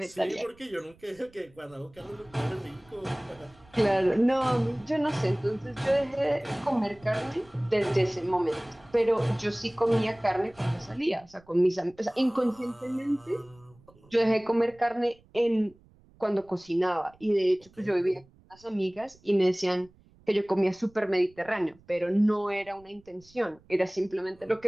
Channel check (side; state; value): right; noise; rumble, 28 dB below the sound